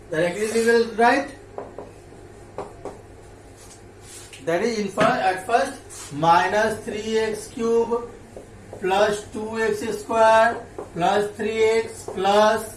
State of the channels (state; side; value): identical; both; correlation 1.00